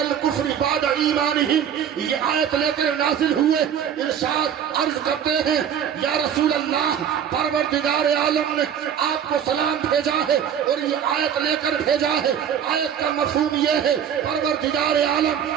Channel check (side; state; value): left; quieter; 8.7 dB